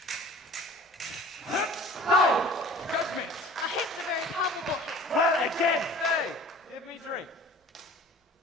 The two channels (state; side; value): normal; both; correlation 0.45